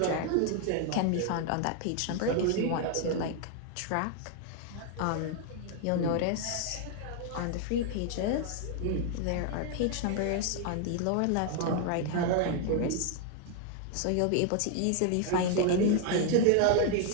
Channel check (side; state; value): both; different; correlation 0.00